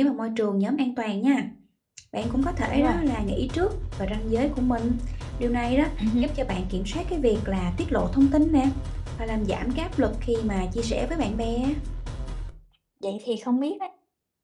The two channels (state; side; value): identical; both; correlation 1.00